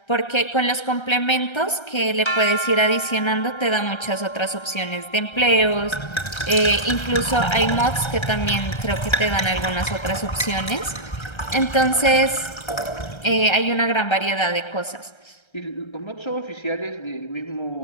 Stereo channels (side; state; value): right; late; 1.3 ms